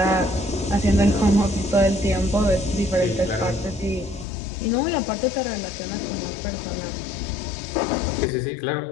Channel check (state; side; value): drops out; right; at 4.2 s